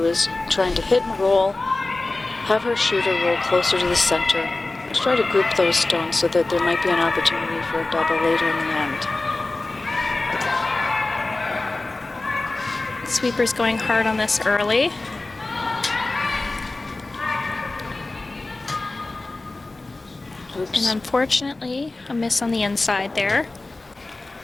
is trying to hit and roll, have her shooter roll closer to the center. Let's try to group those stones so that there might be an opportunity for a double later in the end. Sweeper's going hard on this early. Oops. And unfortunately, a miss on the inside there.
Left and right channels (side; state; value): right; quieter; 3.1 dB